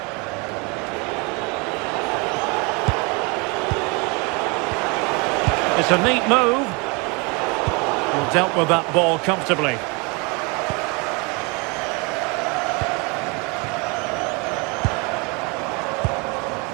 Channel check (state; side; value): quieter; left; 29.9 dB